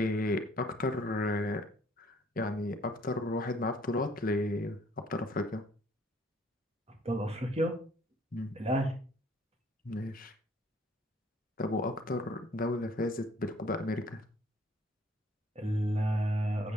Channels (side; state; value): both; normal; correlation 0.61